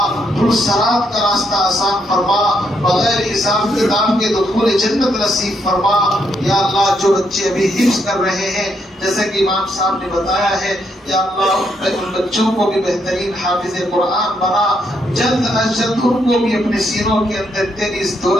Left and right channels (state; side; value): normal; both; correlation 0.76